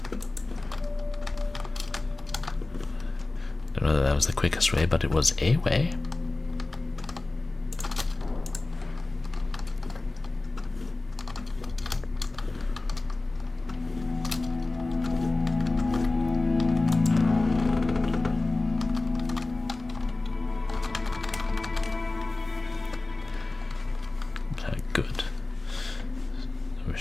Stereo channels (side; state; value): right; quieter; 3.1 dB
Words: Don't know that that was the quickest way, but it was a way.